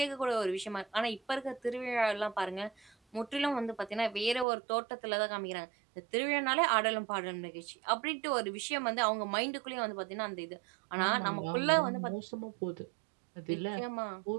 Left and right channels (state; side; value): drops out; left; at 4.5 s